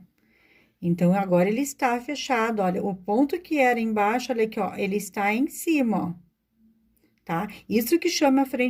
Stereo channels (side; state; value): both; identical; correlation 1.00